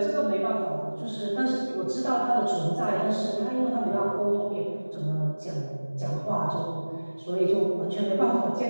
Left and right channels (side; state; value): both; inverted; correlation -1.00